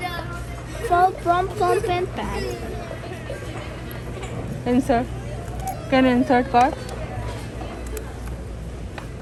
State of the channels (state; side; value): identical; both; correlation 1.00